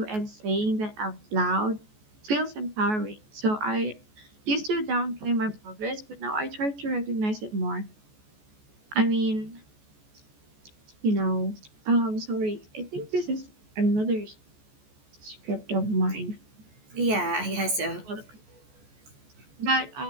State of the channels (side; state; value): left; late; 14 ms